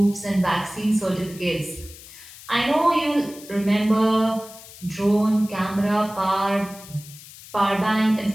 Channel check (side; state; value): left; noise; hiss, 18 dB below the sound